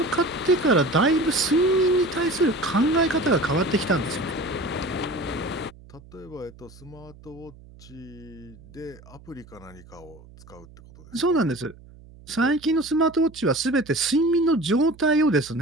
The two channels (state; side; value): noise; right; hum, 22 dB below the sound